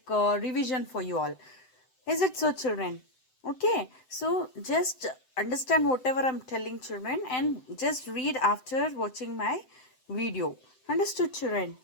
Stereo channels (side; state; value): right; late; 7.8 ms